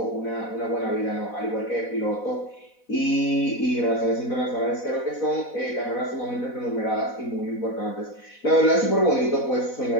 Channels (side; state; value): right; late; 4.1 ms